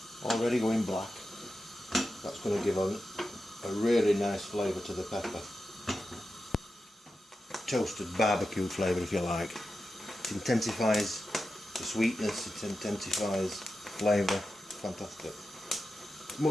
already going black. That's going to give a really nice flavour to the pepper. Toasted barbecue flavour, if you like. It intensifies the sweetness, it intensifies flavour. Fantastic.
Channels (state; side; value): normal; both; correlation 0.91